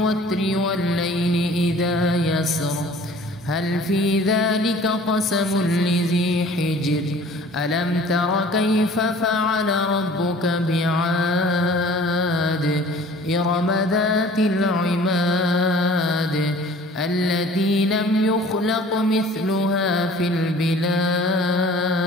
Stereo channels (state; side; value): normal; both; correlation 0.49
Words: والليل إذا يسر هل في ذلك قسم لذي حجر ألم تر كيف فعل ربك بعاد إرم ذات العماد التي لم يخلق مثلها في البلاد